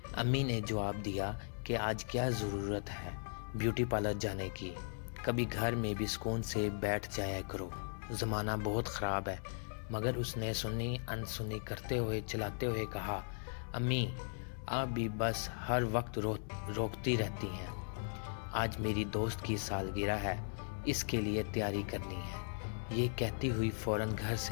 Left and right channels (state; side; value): silent; right; digital silence